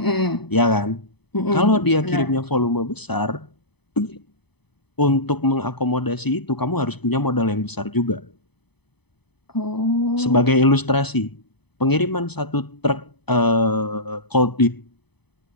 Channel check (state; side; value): late; right; 0.98 ms